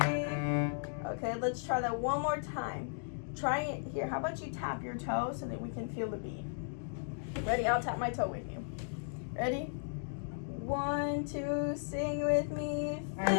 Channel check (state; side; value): silent; right; digital silence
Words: Okay, let's try that one more time. Try it here. How about you tap your toe so that we can feel the beat? Ready? I'll tap my toe with you. Ready? 1, 2, sing with me.